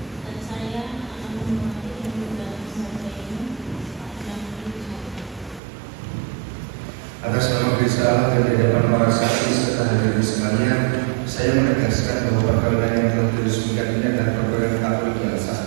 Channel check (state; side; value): drops out; left; at 5.6 s